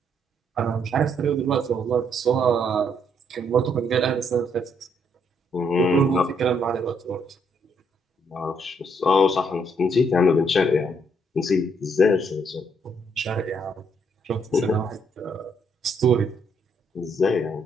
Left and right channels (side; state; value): both; normal; correlation 0.71